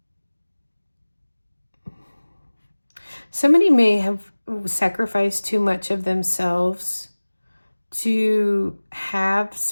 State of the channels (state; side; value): inverted; both; correlation -1.00